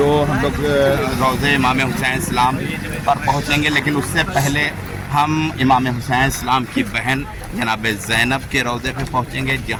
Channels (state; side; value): identical; both; correlation 1.00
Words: हम लोग रोज़े इमाम हुसैन इस्लाम पर पहुंचेंगे। लेकिन उससे पहले हम इमाम हुसैन इस्लाम की बहन जनाब ज़ैनब के रोज़े पे पहुंचेंगे,